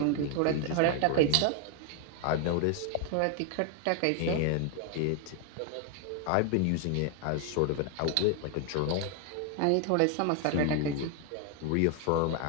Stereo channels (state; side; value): different; both; correlation 0.00